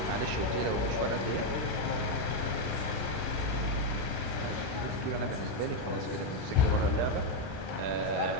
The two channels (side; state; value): both; normal; correlation 0.03